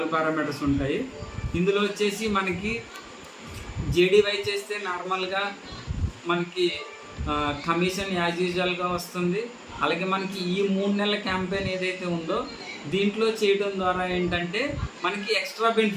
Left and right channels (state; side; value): identical; both; correlation 1.00